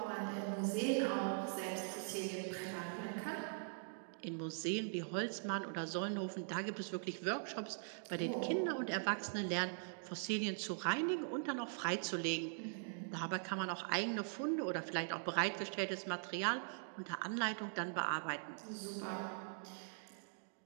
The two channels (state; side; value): silent; left; digital silence